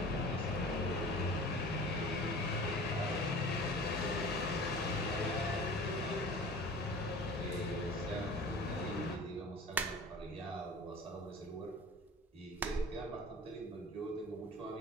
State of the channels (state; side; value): normal; both; correlation 0.41